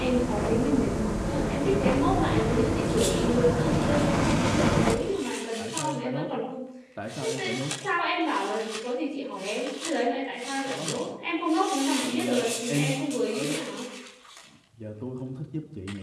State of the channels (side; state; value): both; identical; correlation 1.00